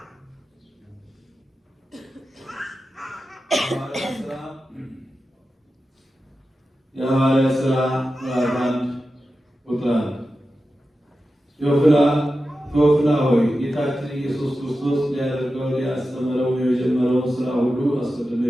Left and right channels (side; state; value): both; normal; correlation 0.92